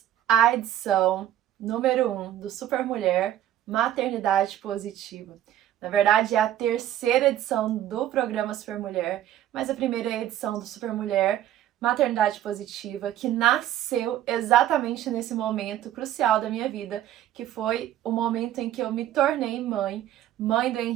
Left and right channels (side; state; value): left; quieter; 12.0 dB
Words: à edição número 1 do Super Mulher Maternidade Positiva. Na verdade, é a terceira edição do programa Super Mulher, mas a primeira edição do Super Mulher Maternidade Positiva, que nasceu exatamente nesse momento crucial da minha vida, que foi o momento em que eu me tornei mãe do